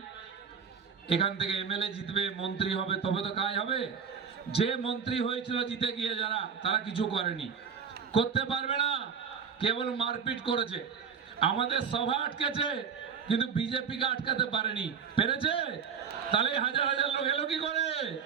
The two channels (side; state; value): left; quieter; 6.6 dB